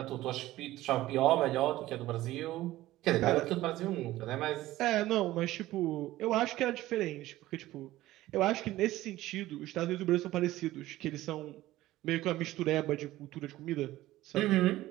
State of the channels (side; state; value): left; quieter; 16.1 dB